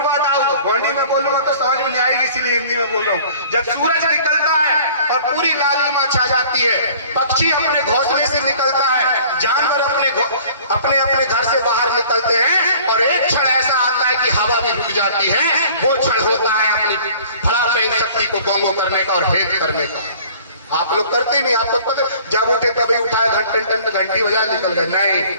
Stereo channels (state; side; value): inverted; both; correlation -0.50